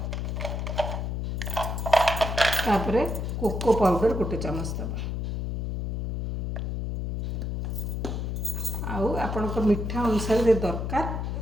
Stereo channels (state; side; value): noise; left; hum, 2 dB below the sound